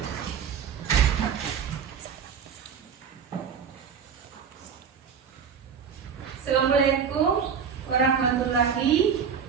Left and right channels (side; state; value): left; quieter; 7.0 dB